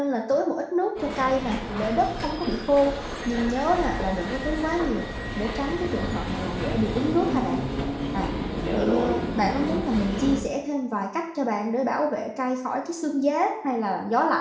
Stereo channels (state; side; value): identical; both; correlation 1.00